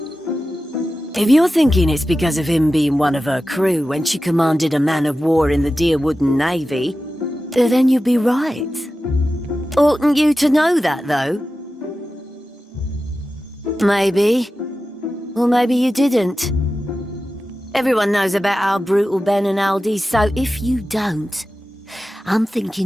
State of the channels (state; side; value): normal; both; correlation 0.93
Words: If you're thinking it's because of him being one of her crew when she commanded a man of war in the dear wooden navy, then you'd be right. Oughtn't you to know that, though? Maybe. Or maybe you didn't. Everyone knows about our brutal Ben and Aldi, so if you don't, I'm